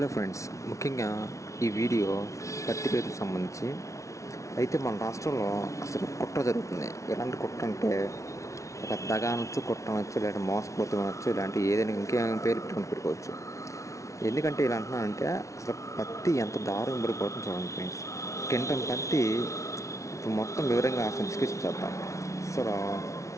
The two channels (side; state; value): right; late; 0.15 ms